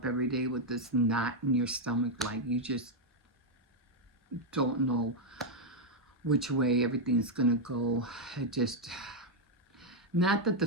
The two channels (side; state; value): both; normal; correlation 0.00